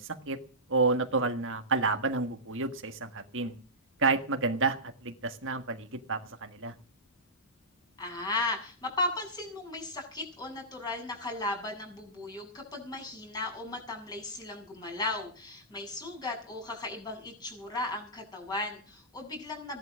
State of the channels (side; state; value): both; normal; correlation -0.18